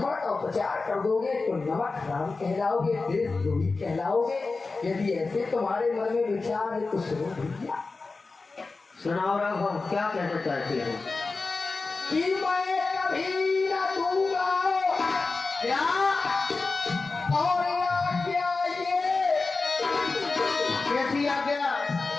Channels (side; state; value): right; quieter; 3.9 dB